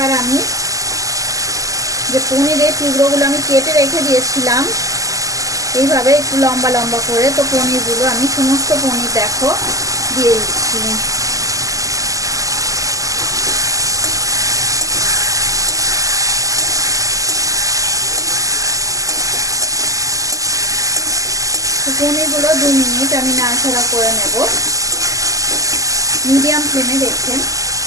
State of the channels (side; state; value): left; late; 0.17 ms